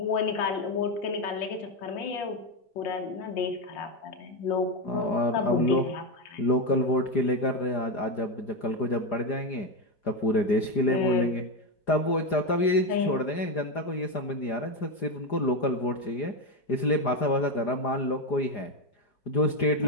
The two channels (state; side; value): late; right; 4.9 ms